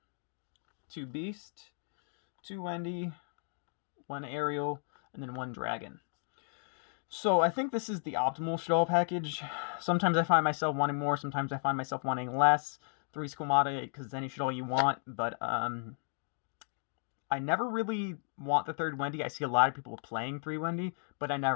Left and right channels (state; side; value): silent; right; digital silence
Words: 2 Beast, 2 Wendy, 1 Aerial, and then 1 Dragon. So I think this is the optimal Shaddoll package. Sometimes I find myself wanting more, sometimes I find myself wanting less. 3 Squamata, because it's any Shaddoll you want, but I never really want the 3rd Wendy. I see a lot of people playing 3 Wendy, but I